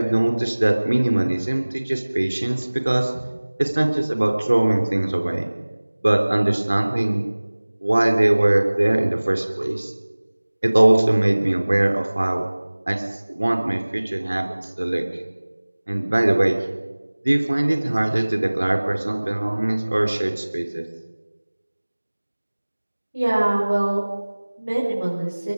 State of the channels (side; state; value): both; inverted; correlation -1.00